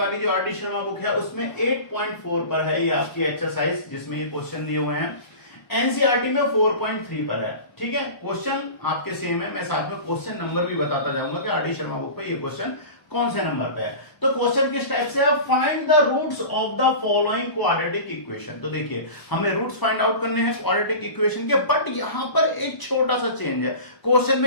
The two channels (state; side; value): late; right; 1.0 ms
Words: जो आरडी शर्मा बुक है उसमें 8.4 पर है ये आपकी एक्सरसाइज जिसमें ये क्वेश्चन दिए हुए हैं। एनसीईआरटी में 4.3 पर है। ठीक है, क्वेश्चन आपके सेम है। मैं साथ में क्वेश्चन नंबर भी बताता जाऊंगा कि आरडी शर्मा बुक पे ये क्वेश्चन कौन से नंबर पे है। तो क्वेश्चन किस टाइप से है, find the roots of the following quadratic equation. तो देखिए हमें रूट्स फाइंड आउट करने हैं क्वाड्रेटिक इक्वेशन के, बट यहां पर एक छोटा सा चेंज है। क्वेश्चन